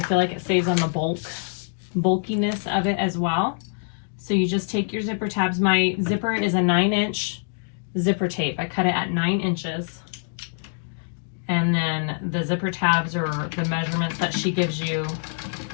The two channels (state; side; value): silent; right; digital silence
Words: like it saves on the bulkiness of it as well. So you just take your zipper tabs. My zipper is a 9-inch zipper tape. I cut it at 9 inches. And then the zipper tabs are the measurements that she gives you